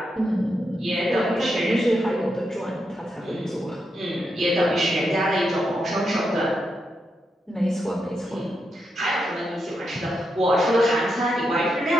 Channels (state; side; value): normal; both; correlation 0.84